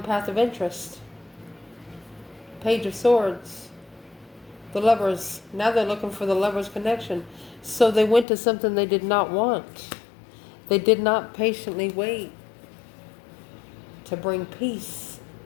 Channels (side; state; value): right; drops out; at 8.2 s